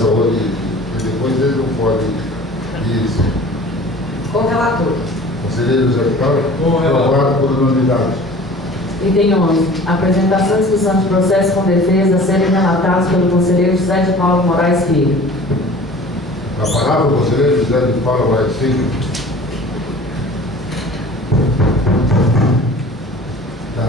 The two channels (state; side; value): normal; both; correlation 0.44